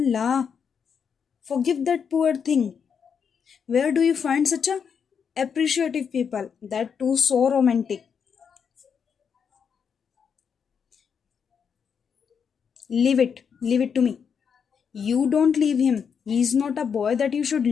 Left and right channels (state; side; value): quieter; right; 6.8 dB